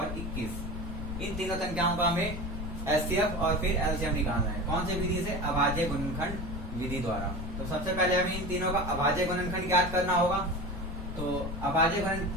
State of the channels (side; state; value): left; noise; rumble, 6 dB below the sound